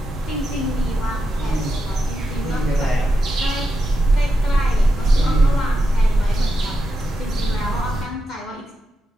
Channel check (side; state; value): both; normal; correlation 0.87